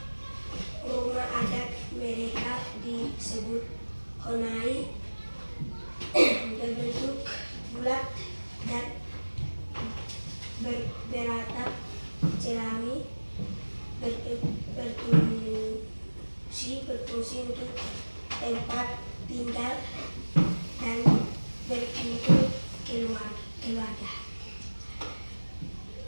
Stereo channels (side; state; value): both; inverted; correlation -1.00